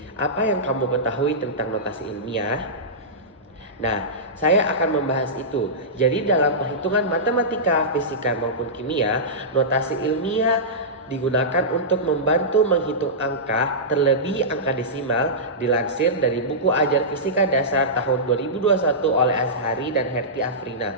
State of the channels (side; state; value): both; normal; correlation -0.15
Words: Apa yang kamu ketahui tentang notasi ilmiah? Nah, saya akan membahas itu. Jadi dalam perhitungan matematika, fisika maupun kimia, notasi ilmiah digunakan untuk membantu menghitung angka, terlebih angka desimal, dilansir dari buku ajar fisika dasar tahun 2021 oleh Azhari dan Herti Afrina.